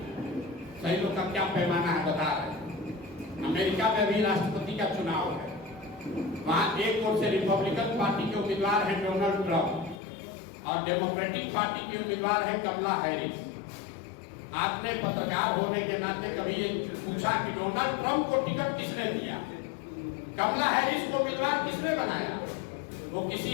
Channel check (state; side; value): drops out; right; at 10.0 s